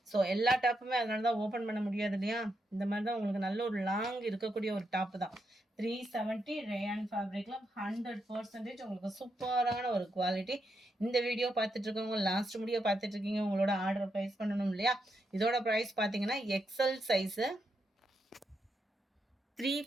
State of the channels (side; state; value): both; normal; correlation 0.82